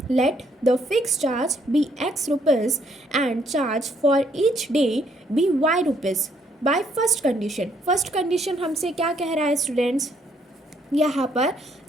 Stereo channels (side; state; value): both; normal; correlation 0.69